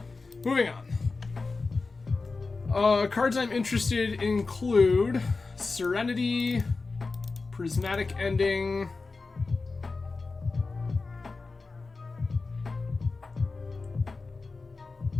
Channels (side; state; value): right; quieter; 4.0 dB